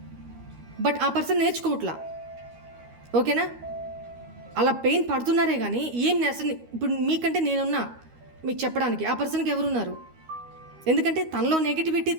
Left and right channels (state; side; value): late; left; 13 ms